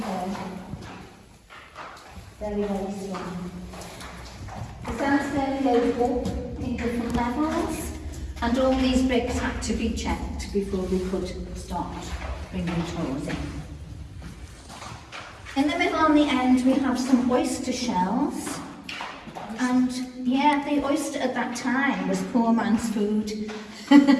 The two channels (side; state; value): both; identical; correlation 1.00